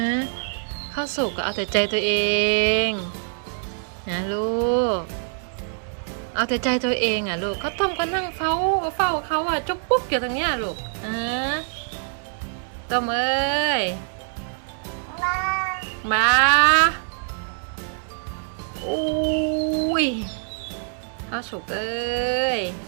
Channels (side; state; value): left; silent; digital silence